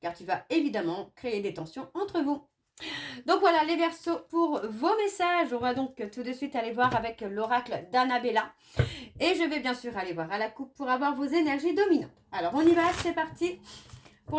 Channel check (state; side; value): identical; both; correlation 1.00